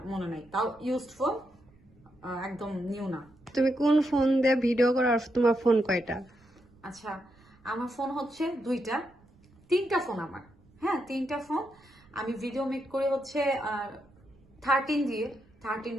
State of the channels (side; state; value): right; noise; rumble, 29 dB below the sound